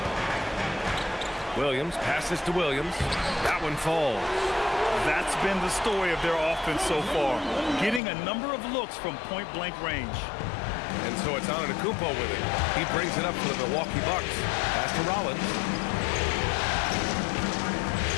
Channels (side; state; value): right; drops out; at 8.0 s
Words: Williams passes to Williams. That one falls. That's been the story of their offense so far. Getting a number of looks from point-blank range. And so it's Antetokounmpo with it. He brings it up for the Milwaukee Bucks. Pass to Rollins.